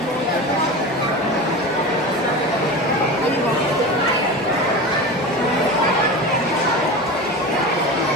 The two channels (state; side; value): normal; both; correlation 0.28